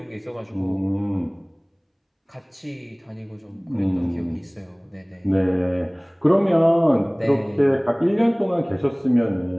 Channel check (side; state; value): both; identical; correlation 1.00